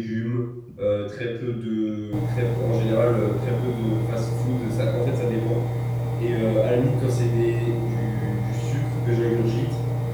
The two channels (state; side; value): identical; both; correlation 1.00